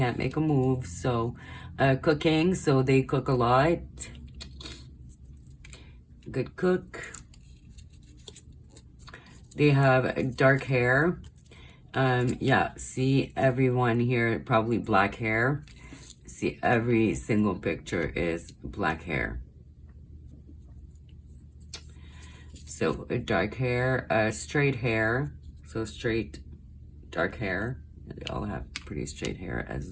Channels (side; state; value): both; identical; correlation 1.00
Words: make a move. So cooking, so they cook a lot. Good cook. They have dark hair. Yeah, see everyone here, probably black hair. See, every single picture is black hair. So dark hair, straight hair. So straight, dark hair. They all have pretty straight hair as